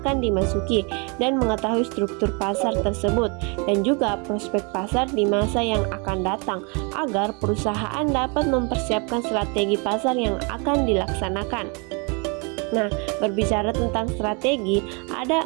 dimasuki, dan mengetahui struktur pasar tersebut, dan juga prospek pasar di masa yang akan datang, agar perusahaan dapat mempersiapkan strategi pasar yang akan dilaksanakan. Nah, berbicara tentang strategi,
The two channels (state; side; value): quieter; left; 33.0 dB